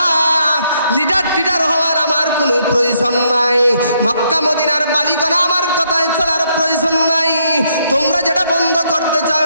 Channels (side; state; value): both; inverted; correlation -0.73